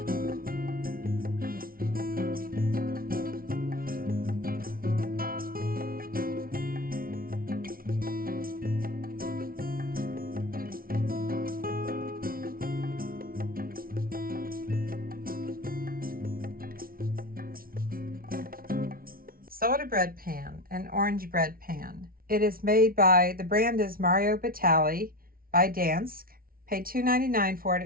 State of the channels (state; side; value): late; left; 0.43 ms